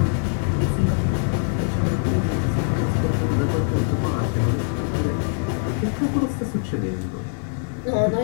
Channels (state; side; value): silent; right; digital silence